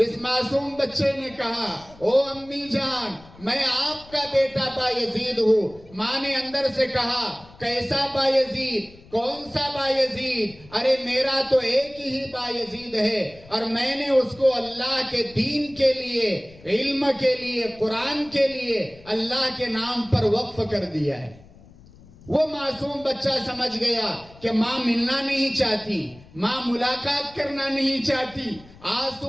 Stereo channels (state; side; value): noise; left; rumble, 23 dB below the sound